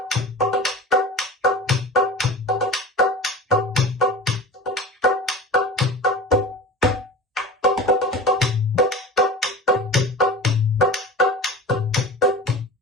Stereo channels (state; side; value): normal; both; correlation 0.34